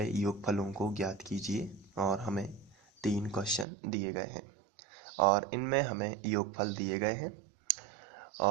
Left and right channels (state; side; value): drops out; left; at 3.7 s